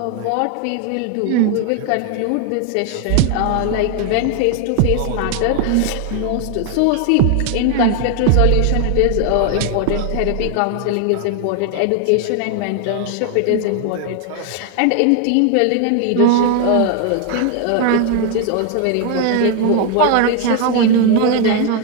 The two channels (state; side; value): different; both; correlation 0.01